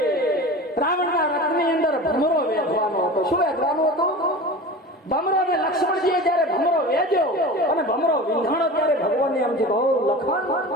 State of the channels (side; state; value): both; normal; correlation 0.33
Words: રાવણના રથની અંદર ભમરો વેચવાનો હતો. શું વેચવાનો હતો? ભમરો. ને લક્ષ્મણજીએ જયારે ભમરો વેચ્યો અને ભમરો વિંધાણો ત્યારે ભગવાનને એમ છે લખન